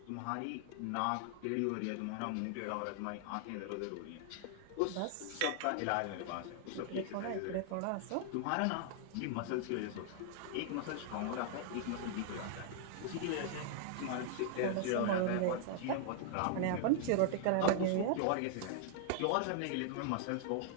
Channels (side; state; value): both; different; correlation 0.00